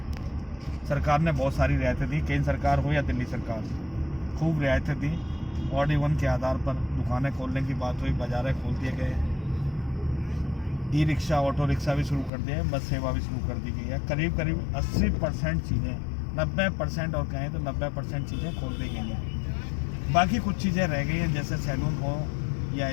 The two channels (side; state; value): right; drops out; at 12.3 s